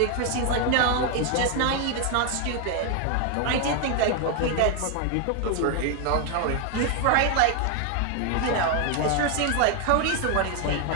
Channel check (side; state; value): both; different; correlation 0.01